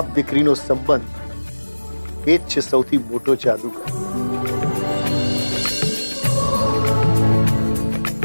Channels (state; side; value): inverted; both; correlation -1.00